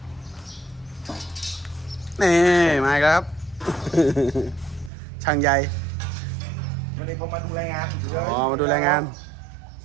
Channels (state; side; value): drops out; left; at 4.9 s